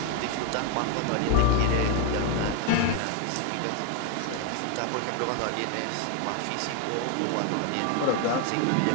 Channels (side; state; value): both; different; correlation 0.00